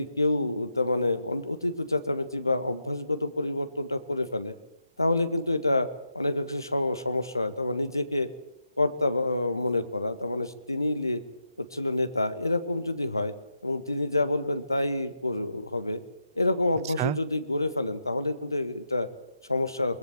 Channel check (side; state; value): both; inverted; correlation -0.85